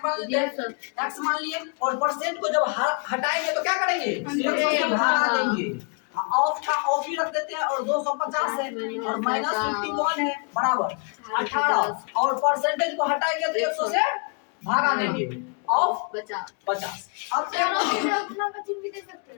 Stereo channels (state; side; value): quieter; right; 37.7 dB